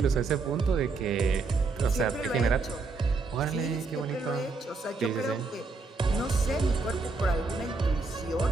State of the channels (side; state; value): left; quieter; 4.0 dB